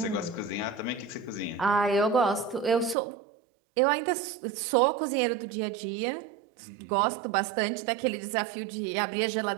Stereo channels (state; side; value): drops out; left; at 3.0 s